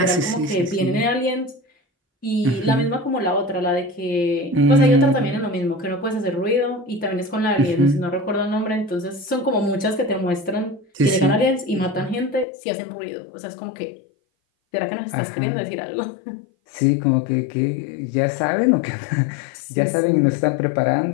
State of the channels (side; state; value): right; drops out; at 12.5 s